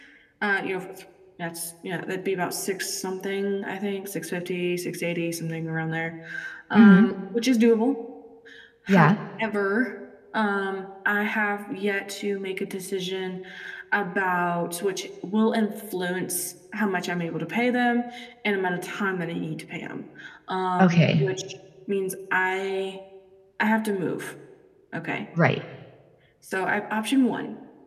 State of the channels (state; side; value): identical; both; correlation 1.00